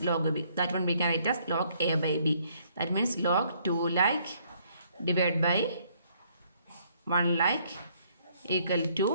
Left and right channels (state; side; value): inverted; both; correlation -0.66